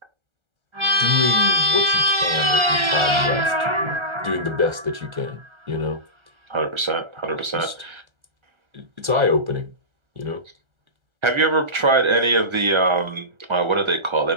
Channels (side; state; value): left; late; 1.3 ms